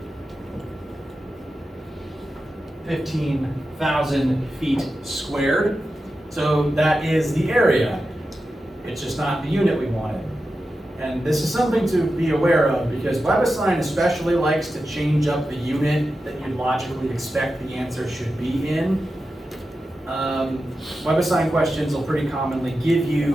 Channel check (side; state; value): both; normal; correlation 0.91